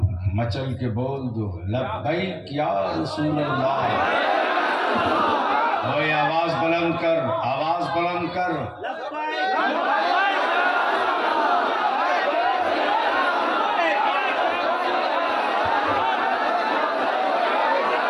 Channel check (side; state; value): both; identical; correlation 1.00